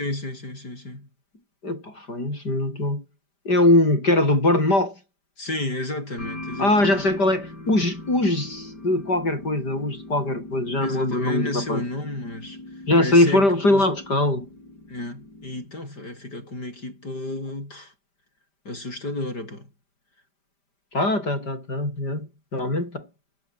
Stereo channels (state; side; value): late; right; 5.1 ms